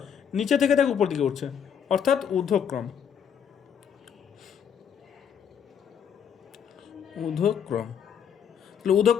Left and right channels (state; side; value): quieter; right; 8.0 dB